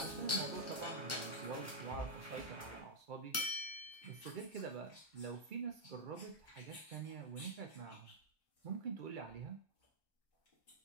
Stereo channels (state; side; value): normal; both; correlation -0.06